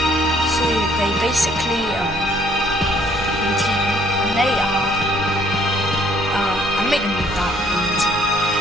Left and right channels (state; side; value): normal; both; correlation 0.64